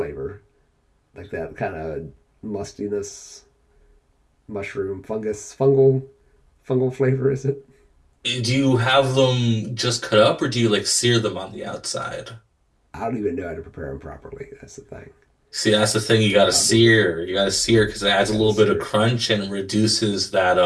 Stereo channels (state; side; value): identical; both; correlation 1.00